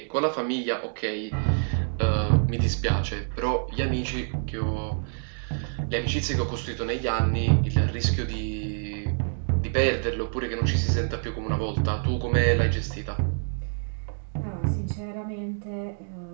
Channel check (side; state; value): left; silent; digital silence